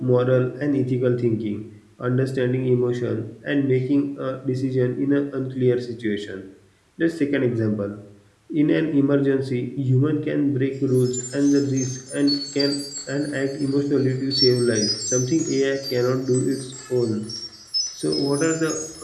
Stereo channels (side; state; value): both; identical; correlation 1.00